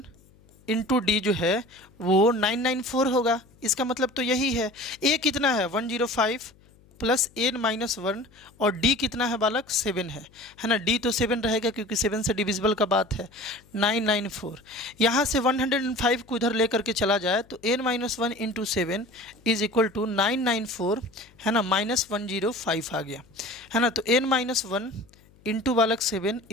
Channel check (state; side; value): noise; left; hum, 28 dB below the sound